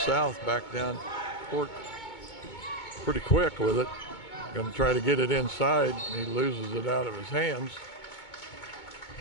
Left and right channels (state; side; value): late; right; 2.2 ms